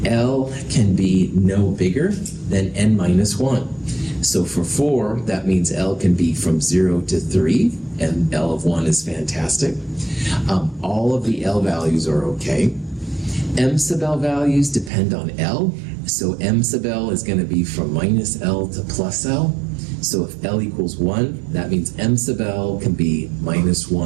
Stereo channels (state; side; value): drops out; left; at 14.9 s